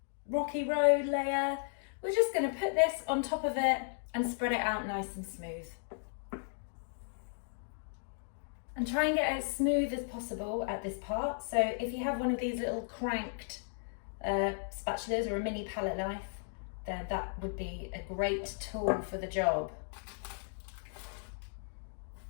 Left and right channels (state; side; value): silent; right; digital silence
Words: rocky road layer, we're just going to put this on top of it and spread it out nice and smooth. And try and get it as smooth as possible at this part. So if you have one of these little cranked spatulas or a mini palette knife, then that would be a great tool for the job.